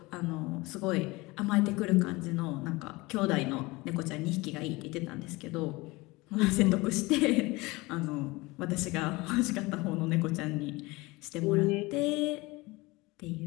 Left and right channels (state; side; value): quieter; right; 22.6 dB